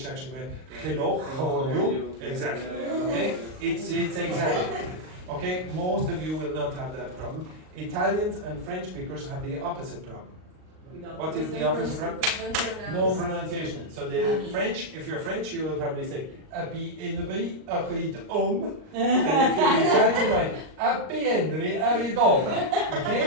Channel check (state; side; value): late; left; 38 ms